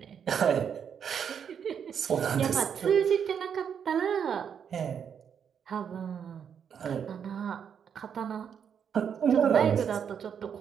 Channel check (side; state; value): left; quieter; 7.7 dB